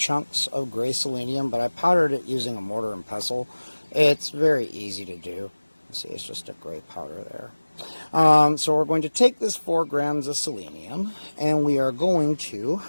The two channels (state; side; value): inverted; both; correlation -1.00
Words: of gray selenium, but I powdered it using a mortar and pestle. It's very easy to do. See, it's just a gray powder there. So we're going to take this 4 grams of selenium, and we are going to